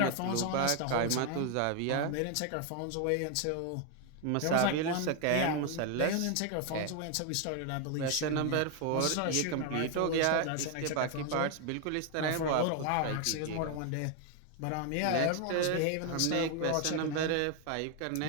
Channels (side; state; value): both; different; correlation 0.01